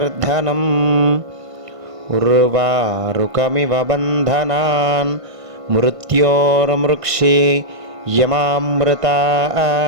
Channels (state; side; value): late; left; 1.5 ms